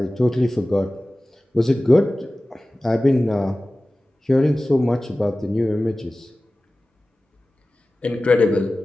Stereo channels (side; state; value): both; normal; correlation 0.96